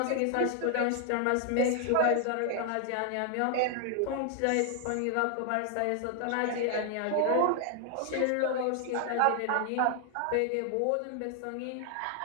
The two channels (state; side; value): different; both; correlation 0.00